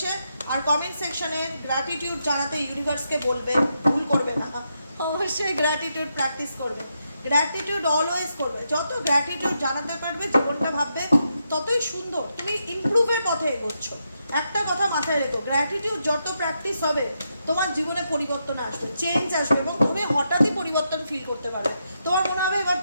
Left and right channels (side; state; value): both; inverted; correlation -0.82